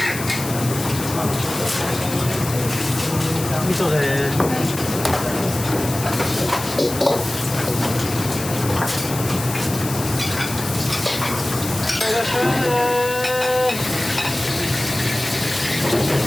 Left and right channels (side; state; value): left; noise; hiss, 9 dB below the sound